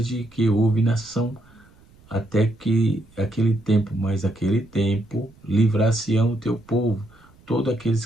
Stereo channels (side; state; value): right; noise; rumble, 28 dB below the sound